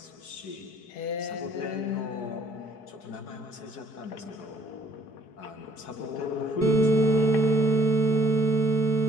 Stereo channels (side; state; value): right; late; 4.7 ms